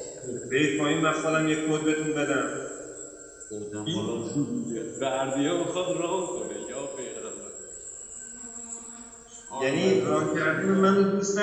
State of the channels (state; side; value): identical; both; correlation 1.00